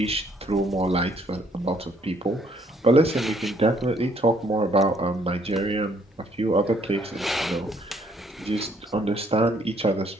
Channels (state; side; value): normal; both; correlation 0.66